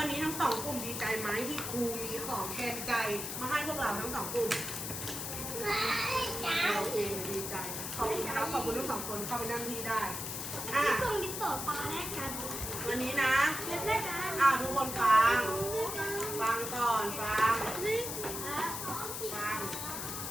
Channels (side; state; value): left; noise; hiss, 5 dB below the sound